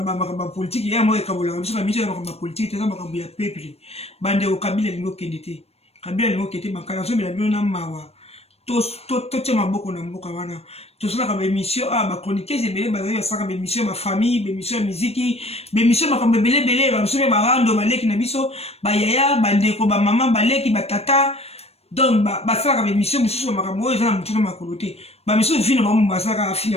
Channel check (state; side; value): late; right; 0.30 ms